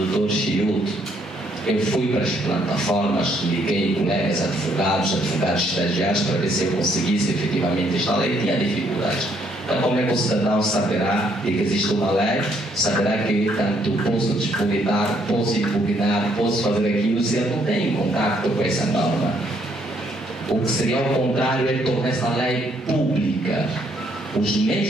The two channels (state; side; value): normal; both; correlation 0.69